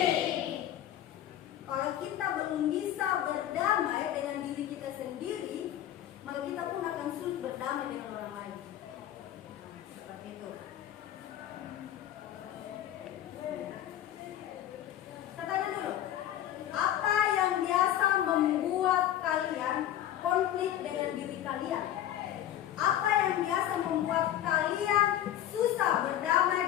Kalau kita belum bisa berdamai dengan diri kita sendiri, maka kita pun akan sulit berdamai dengan orang lain. Seperti itu. Saya tanya dulu, apa yang biasa membuat kalian konflik dengan diri kalian? Apa yang biasa membuat kalian susah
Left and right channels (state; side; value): quieter; right; 11.9 dB